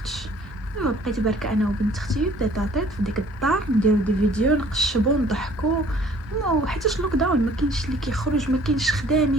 دابا بقيت بركه انا وبنت اختي تيطاطيط في ديك الدار، نديرو دي فيديو، نقشبو، نضحكو، وحيتاش لوك داون ما كاينش اللي كيخرج، ما كاينش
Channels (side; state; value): both; normal; correlation 0.55